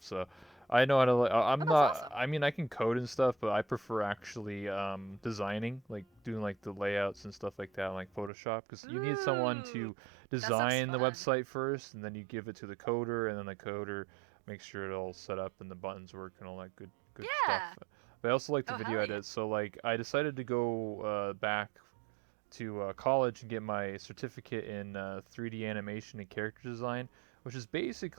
So, I know how to. Oh, I'm that's not. awesome. I mean, I can code and stuff, but I prefer actually designing, like doing like the layouts and stuff like that, like Photoshop, because you need someone Ooh, to that sounds design the fun. website first, and then you give it to the coder, and then the coder makes sure it all set up and the buttons work and all that good stuff. Yeah. But I also like to Oh, video hell yeah. edit, so like I decided to go back to college and get my certificate in 3D animation and character design, which is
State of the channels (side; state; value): left; drops out; at 8.3 s